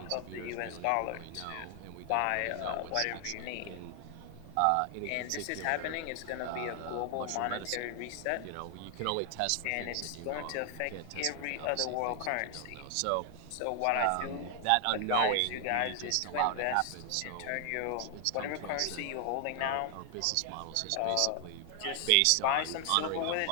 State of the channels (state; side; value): different; both; correlation 0.00